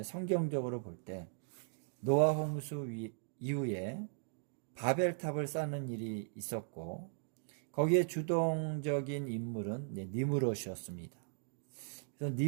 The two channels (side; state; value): left; silent; digital silence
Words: 성경적으로 볼 때 노아 홍수 이후에 바벨탑을 쌓는 일이 있었고 거기에 주동적인 인물은 니므롯이었습니다. 그래서